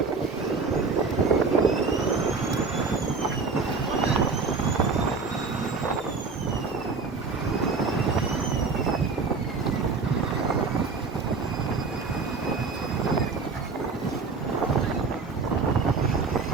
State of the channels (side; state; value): left; quieter; 4.5 dB